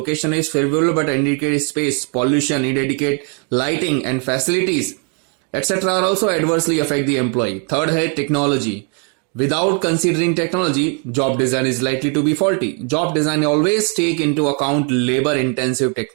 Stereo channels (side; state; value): left; quieter; 38.6 dB